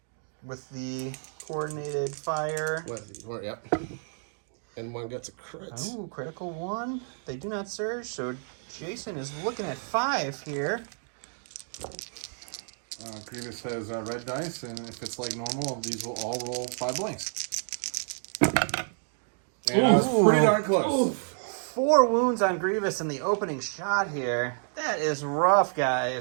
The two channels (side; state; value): left; silent; 58 dB below the other